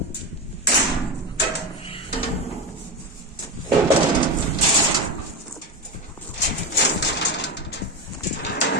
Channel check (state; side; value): normal; both; correlation 0.18